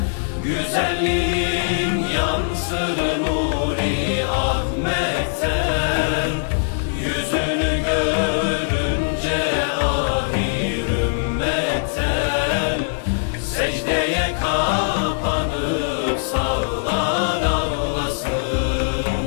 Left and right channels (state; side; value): silent; right; digital silence